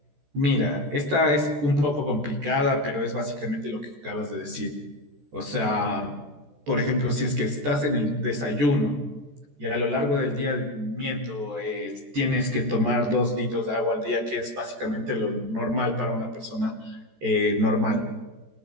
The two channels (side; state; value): left; late; 14 ms